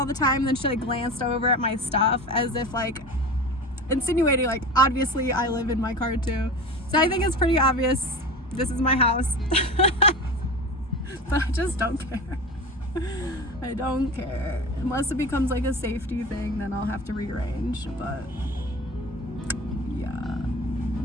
the time. And then she like glanced over at my stuff as if like insinuating like, obviously I live in my car too. So I think it's pretty obvious this is my house. But I just don't care. I don't care. Unless it becomes like a safety thing, then I'll have to rearrange. But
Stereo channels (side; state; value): both; normal; correlation 0.31